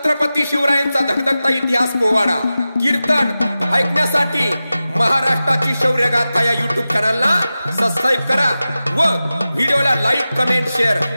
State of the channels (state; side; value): inverted; both; correlation -0.94